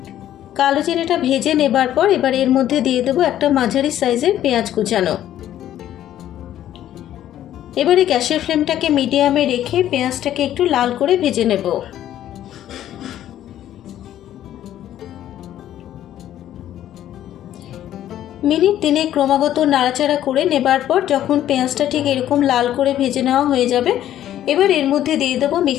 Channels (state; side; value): quieter; right; 11.9 dB